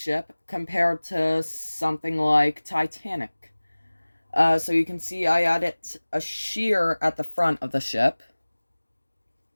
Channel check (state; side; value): inverted; both; correlation -1.00